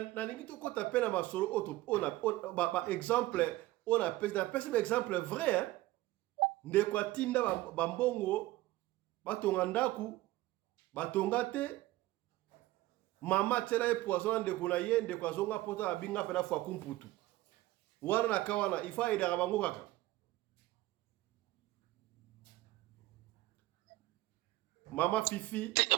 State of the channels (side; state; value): left; quieter; 17.4 dB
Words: lingi to kota pena masolo on ba exemple on a pesa exemple vrai hein ndeko atinda ba mbongo batonga ndaku batonga te mama tela e poison ndeko na ye ndeko azonga pota abinga pena fwa kumputu wana na kawana ifa ida bango kaka mama Fifi